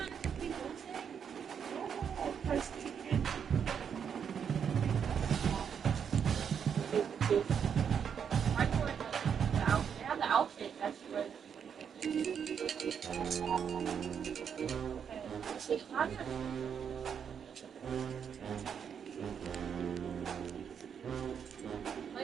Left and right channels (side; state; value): left; quieter; 7.5 dB